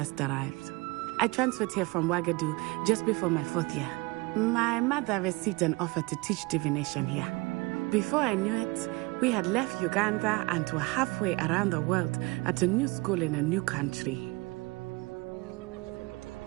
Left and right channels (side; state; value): left; quieter; 25.1 dB